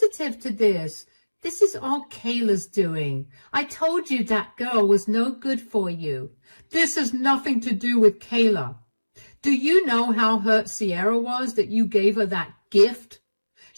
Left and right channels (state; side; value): inverted; both; correlation -1.00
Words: to this? This is all Kayla's doing. I told you that girl was no good for you. This has nothing to do with Kayla. Do you know how hurt Sierra was that you gave her that gift?